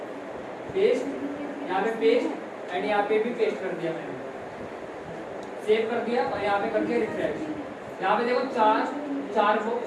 पेस्ट, यहाँ पे पेस्ट एंड यहाँ पे भी पेस्ट कर दिया मैंने, सेव कर दिया और यहाँ पे कर दिया रिफ्रेश। यहाँ पे देखो 4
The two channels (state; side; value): identical; both; correlation 1.00